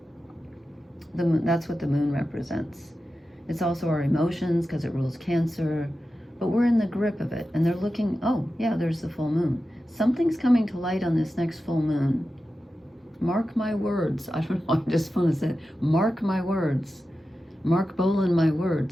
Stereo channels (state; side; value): normal; both; correlation 0.92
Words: The moon, that's what the moon represents. It's also our emotions, because it rules Cancer, but we're in the grip of it, and they're looking, oh yeah, there's the full moon. Something's coming to light on this next full moon. Mark my words. I don't know, I just want to say, mark my words. Mark Bolan my